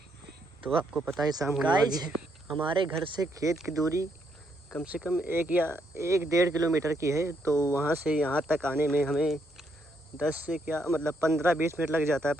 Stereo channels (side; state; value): both; normal; correlation 0.75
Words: तो आपको पता है शाम होने वाली है। हमारे घर से खेत की दूरी कम से कम 1 या 1.5 किलोमीटर की है। तो वहाँ से यहाँ तक आने में हमें 10 से क्या मतलब 15-20 मिनट लग जाता है,